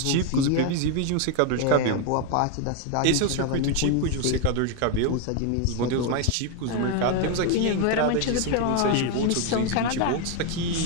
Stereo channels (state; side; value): different; both; correlation 0.01